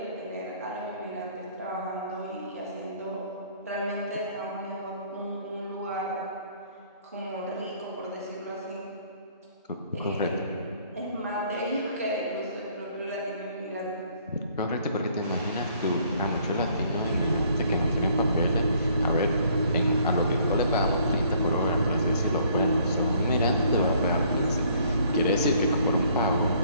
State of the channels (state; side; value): inverted; both; correlation -0.61